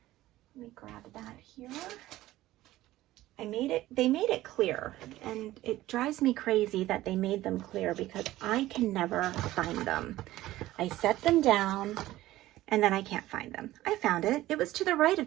me grab that here. They made it clear, and it drives me crazy that they made them clear because I can never find them. I set them down and then I can't find them. I found it. It was to the right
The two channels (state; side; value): quieter; left; 15.9 dB